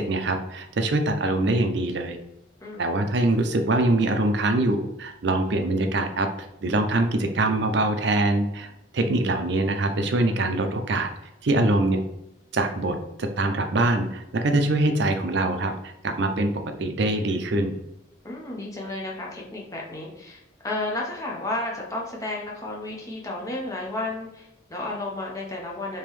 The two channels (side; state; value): both; normal; correlation 0.49